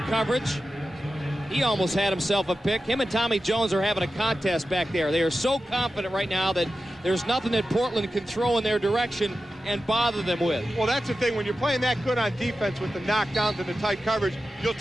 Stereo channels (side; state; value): both; normal; correlation 0.92